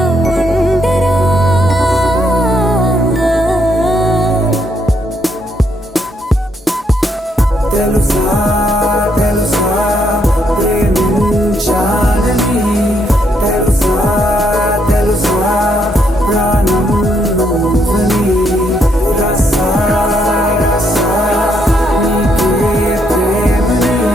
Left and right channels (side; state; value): both; normal; correlation 0.74